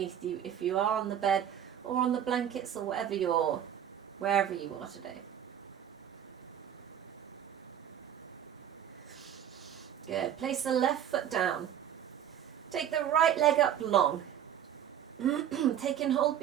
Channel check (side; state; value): left; quieter; 9.9 dB